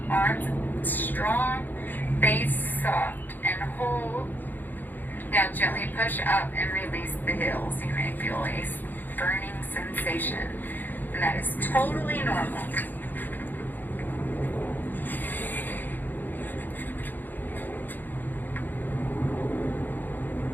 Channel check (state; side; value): late; right; 0.088 ms